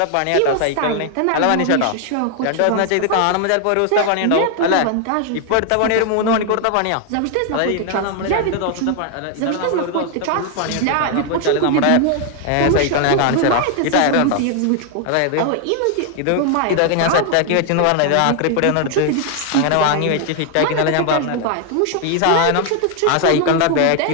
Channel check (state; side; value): different; both; correlation 0.00